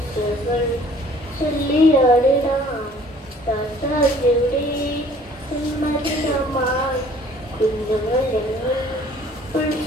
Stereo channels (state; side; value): normal; both; correlation 0.54